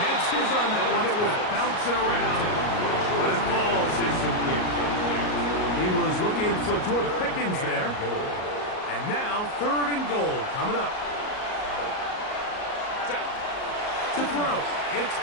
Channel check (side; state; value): right; late; 38 ms